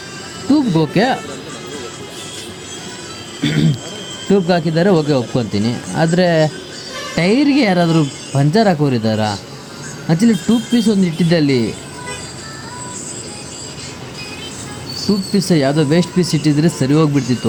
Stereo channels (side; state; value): both; identical; correlation 1.00